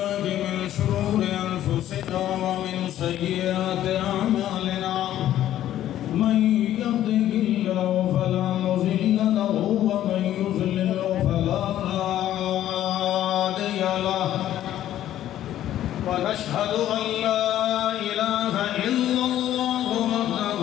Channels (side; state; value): right; quieter; 12.3 dB